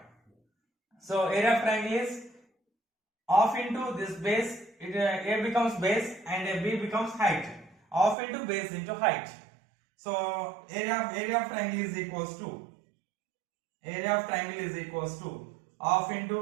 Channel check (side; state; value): left; drops out; at 8.2 s